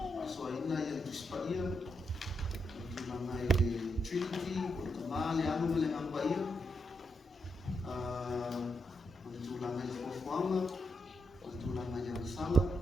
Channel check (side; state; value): both; normal; correlation 0.82